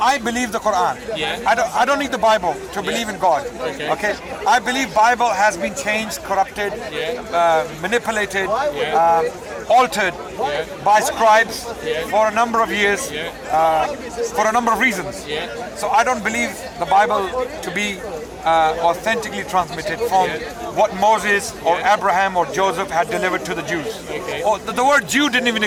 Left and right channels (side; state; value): both; identical; correlation 1.00